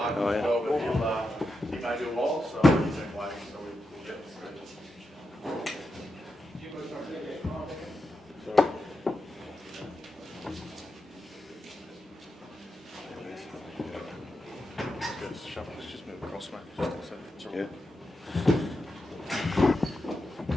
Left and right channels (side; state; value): both; normal; correlation 0.87